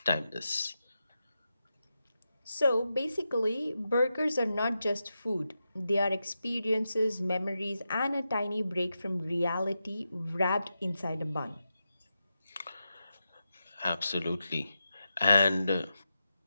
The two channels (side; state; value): both; inverted; correlation -0.89